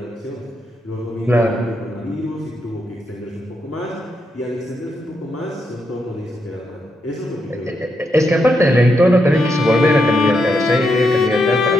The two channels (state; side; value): normal; both; correlation 0.81